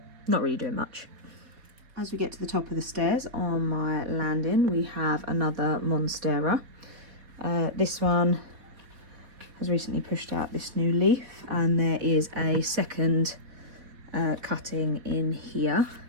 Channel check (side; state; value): left; late; 4.1 ms